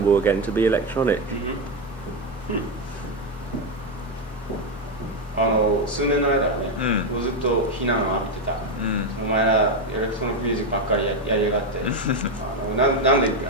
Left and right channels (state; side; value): normal; both; correlation 0.07